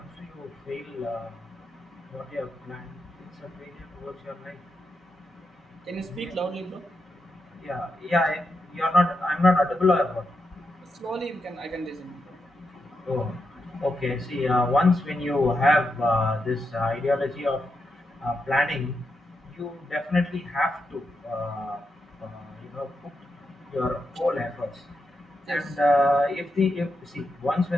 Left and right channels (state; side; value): normal; both; correlation 0.85